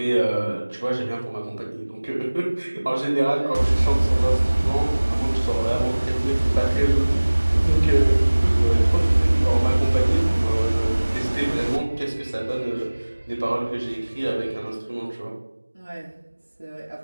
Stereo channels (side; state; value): both; inverted; correlation -1.00